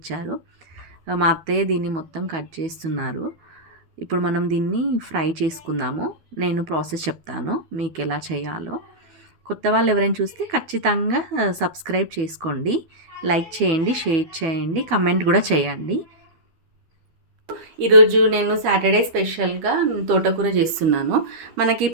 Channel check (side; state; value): left; late; 12 ms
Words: మా అత్తయ్య దీన్ని మొత్తం కట్ చేస్తున్నారు. ఇప్పుడు మనం దీన్ని ఫ్రై చేసుకుందాము. నేను ప్రాసెస్ చెప్తాను మీకు ఎలా చేయాలో. కొత్త వాళ్ళు ఎవరైనా చూస్తే ఖచ్చితంగా సబ్స్క్రైబ్ చేసుకోండి, లైక్ చేయండి, షేర్ చేయండి, కమెంట్ కూడా చేయండి. ఈరోజు నేను సాటర్డే స్పెషల్గా తోటకూర చేస్తున్నాను. మనకి